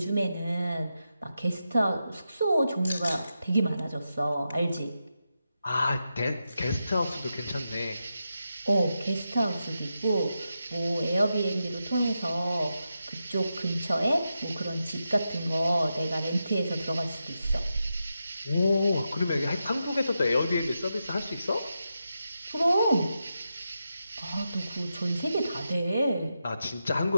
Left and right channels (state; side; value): inverted; both; correlation -0.88